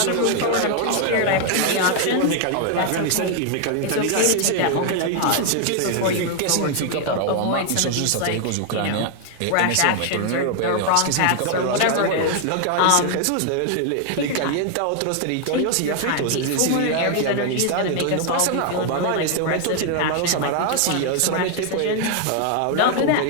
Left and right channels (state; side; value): different; both; correlation 0.00